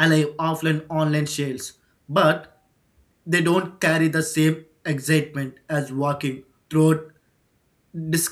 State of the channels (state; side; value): identical; both; correlation 1.00